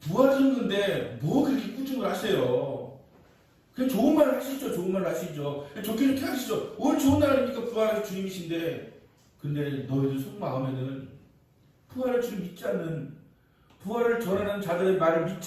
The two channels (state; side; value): identical; both; correlation 1.00